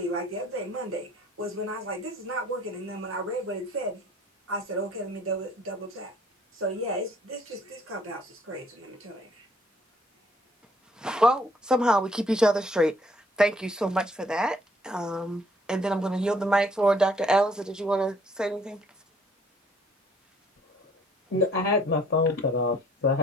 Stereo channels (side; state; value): both; normal; correlation 0.60